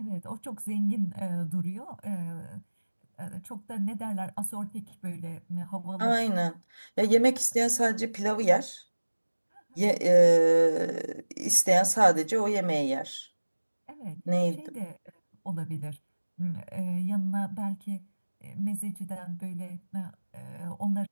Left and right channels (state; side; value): inverted; both; correlation -1.00